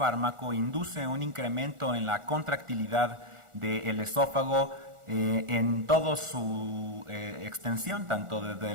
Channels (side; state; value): left; late; 1.4 ms